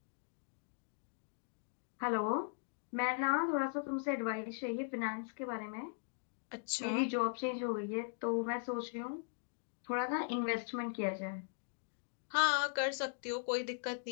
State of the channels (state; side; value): silent; right; digital silence